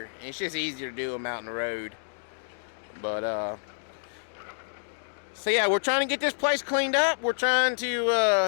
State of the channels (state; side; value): silent; right; digital silence